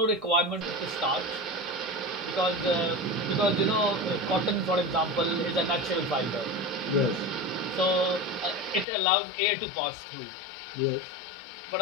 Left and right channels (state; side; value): drops out; right; at 8.8 s